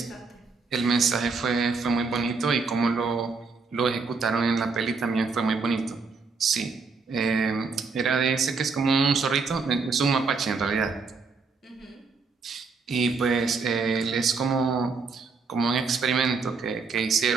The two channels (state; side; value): quieter; left; 4.6 dB